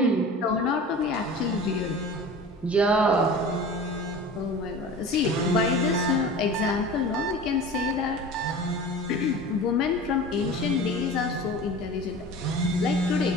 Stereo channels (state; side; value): normal; both; correlation 0.37